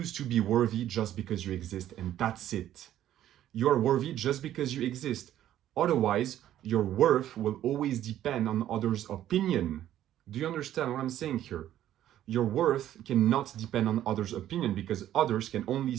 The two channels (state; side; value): quieter; left; 12.1 dB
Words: to be worthy just because you exist, and that's it. You are worthy just because you exist. Otherwise, your worth will always depend on others' opinion. Do you understand what I'm saying here? Your worth cannot depend on others' opinion because others can only